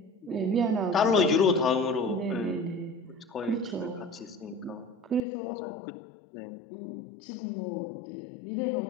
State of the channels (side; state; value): right; drops out; at 5.2 s